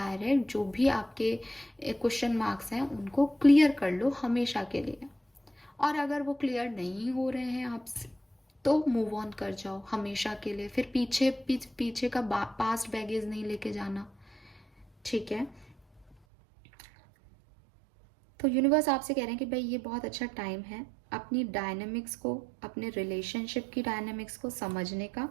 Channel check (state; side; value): drops out; left; at 16.2 s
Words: जो भी आपके क्वेश्चन मार्क्स हैं उनको क्लियर कर लो हमेशा के लिए। और अगर वो क्लियर नहीं हो रहे हैं आपसे तो मूव ऑन कर जाओ हमेशा के लिए। फिर पीछे का पास्ट बैगेज नहीं लेके जाना, ठीक है? तो यूनिवर्स आपसे कह रहे हैं कि भाई ये बहुत अच्छा टाइम है अपनी डायनेमिक्स को, अपने रिलेशनशिप की डायनेमिक्स को समझने का,